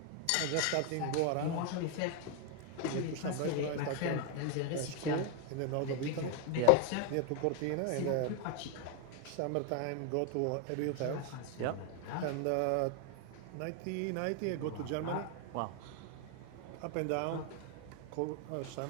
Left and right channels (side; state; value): both; different; correlation 0.00